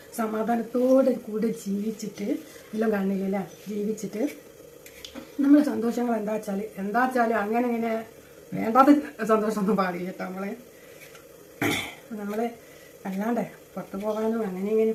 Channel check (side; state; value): both; identical; correlation 1.00